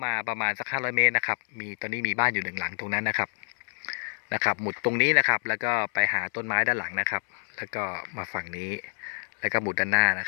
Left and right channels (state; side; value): silent; right; 60 dB below the other